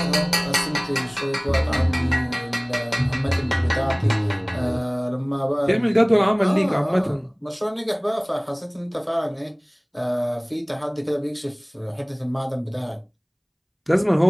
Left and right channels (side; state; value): both; identical; correlation 1.00